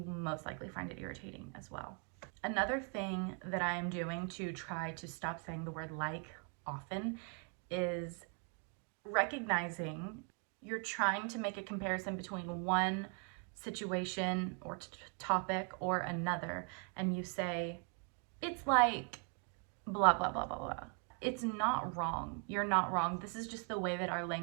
most likely find it irritating as well. Another thing that I am doing to try to stop saying the word like often is recognizing you're trying to make a comparison between one situation or topic or another, and you say, it's like blah, blah, blah, blah, blah. It's not wrong. You're not wrong. This is just the way that our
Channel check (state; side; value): quieter; left; 36.8 dB